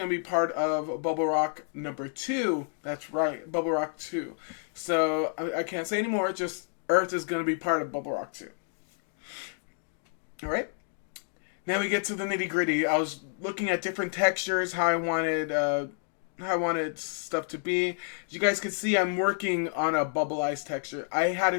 to be part of Bubble Rock number 2. That's right, Bubble Rock 2. So, I can't say anymore, just Earth is going to be part of Bubble Rock 2. Alright? Now we get to the nitty gritty. I was looking at different textures, how I wanted stuff to be. As you guys can see, I'm working on a bubble ice texture. I had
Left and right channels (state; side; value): silent; right; 58 dB below the other